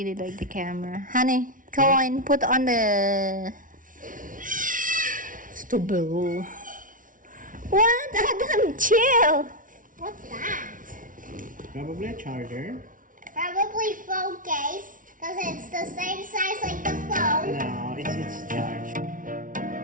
like the camera. Honey, go on, put on the vegetable. What? Adam, chill. What's that? Probably a charger. Probably phone case, because it's the same size like the phone. No, it's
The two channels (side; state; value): left; late; 0.38 ms